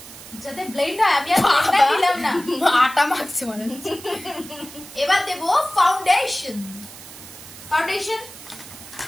যাতে ব্লেন্ড হয়। আমি আর ব্লেন্ডার দিলাম না, আটা মাখছি মানে। এবার দেব ফাউন্ডেশন।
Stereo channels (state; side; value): noise; right; hiss, 16 dB below the sound